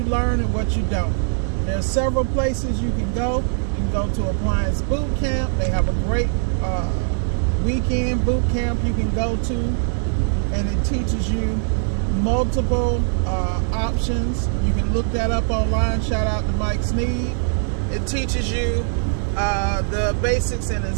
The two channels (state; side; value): silent; left; digital silence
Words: learn and what you don't. There are several places you can go. You can go to Appliance Boot Camp. They have a great weekend boot camp you can go to, and it teaches you multiple options. You can look that up online. Shout out to Mike Sneed. It teaches you the basics in